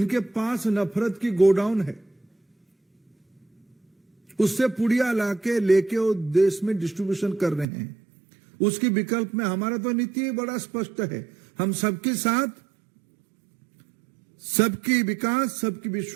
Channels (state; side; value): drops out; left; at 7.7 s